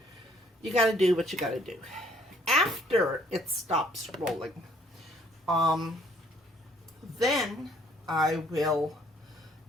you got to do what you got to do. After it stops rolling, then I will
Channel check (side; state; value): both; normal; correlation 0.62